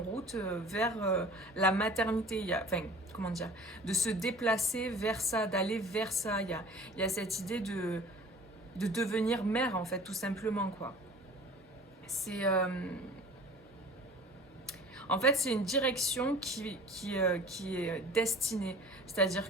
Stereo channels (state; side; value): normal; both; correlation 0.44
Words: route vers la maternité, enfin, comment dire, de se déplacer vers ça, d'aller vers ça. Il y a cette idée de devenir mère, en fait, tout simplement, quoi. C'est... en fait, c'est une direction qui est destinée.